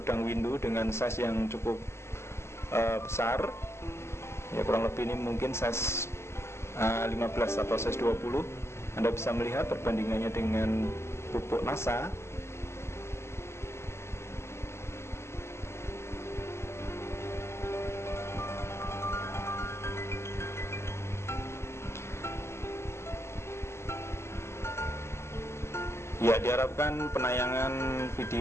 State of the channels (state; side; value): late; right; 0.13 ms